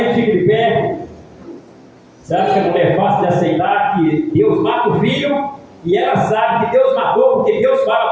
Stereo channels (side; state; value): both; identical; correlation 1.00